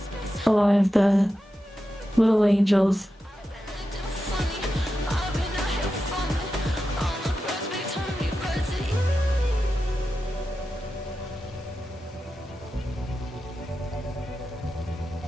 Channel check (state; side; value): normal; both; correlation 0.91